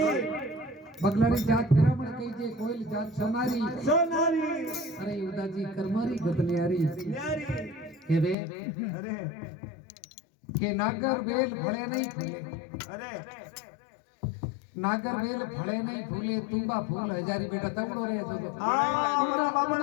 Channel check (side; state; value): right; drops out; at 8.3 s